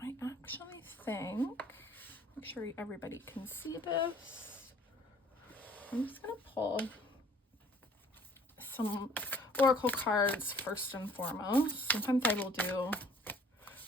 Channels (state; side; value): normal; both; correlation 0.54